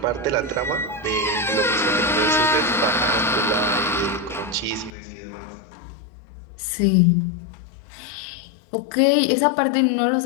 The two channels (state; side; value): drops out; right; at 4.9 s